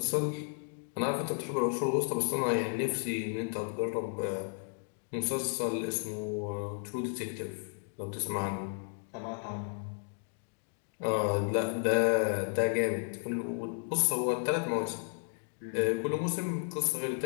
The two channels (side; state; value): right; silent; 56 dB below the other